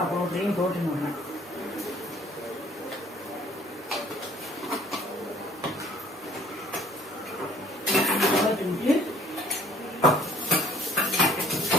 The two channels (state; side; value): normal; both; correlation 0.56